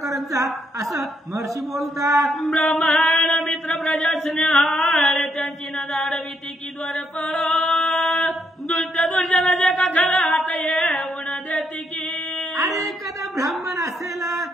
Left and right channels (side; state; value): both; normal; correlation 0.75